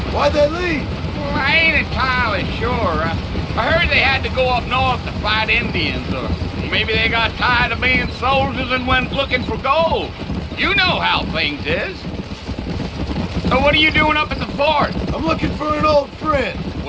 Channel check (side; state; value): both; identical; correlation 1.00